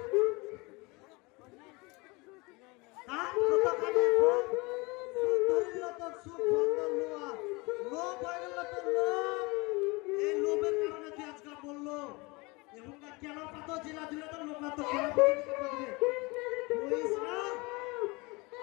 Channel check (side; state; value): right; quieter; 25.8 dB